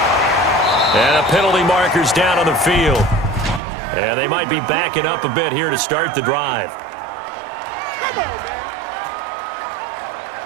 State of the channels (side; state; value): left; drops out; at 3.6 s